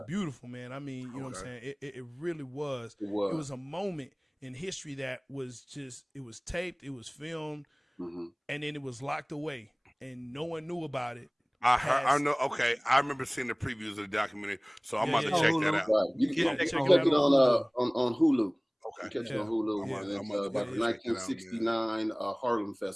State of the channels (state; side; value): identical; both; correlation 1.00